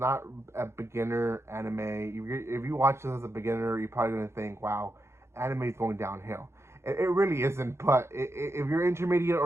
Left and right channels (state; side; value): late; left; 0.13 ms